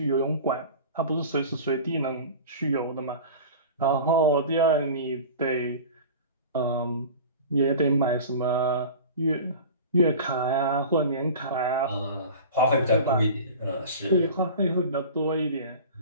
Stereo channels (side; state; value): both; inverted; correlation -0.36